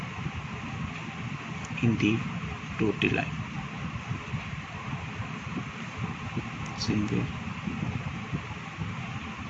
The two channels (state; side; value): identical; both; correlation 1.00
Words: in the dotted line. Same way.